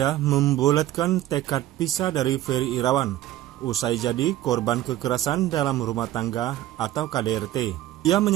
membulatkan tekad pisah dari Ferry Irawan, usai jadi korban kekerasan dalam rumah tangga atau KDRT. Ia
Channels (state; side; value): quieter; left; 14.3 dB